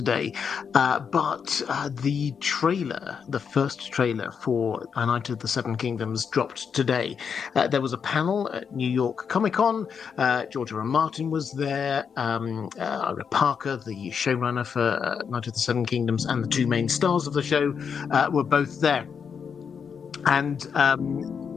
but the trailer, the first trailer for A Knight of the Seven Kingdoms dropped today. There was a panel at New York Comic Con. George R. R. Martin was there, Ira Parker, the showrunner for Knight of the Seven Kingdoms, and the two main stars of the show were both there. And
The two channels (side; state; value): right; quieter; 6.6 dB